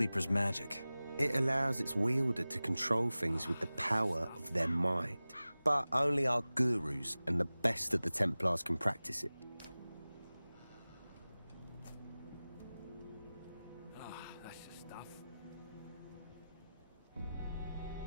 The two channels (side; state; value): both; inverted; correlation -0.97